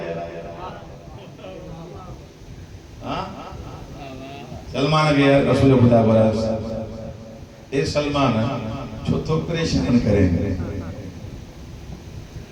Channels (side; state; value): both; identical; correlation 1.00